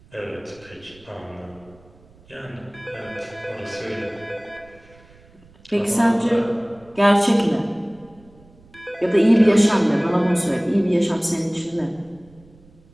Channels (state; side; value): noise; right; rumble, 27 dB below the sound